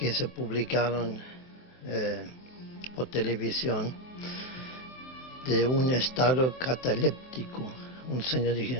se publicaron por televisión de un estado cataléptico. Un señor dijo,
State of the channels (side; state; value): right; late; 23 ms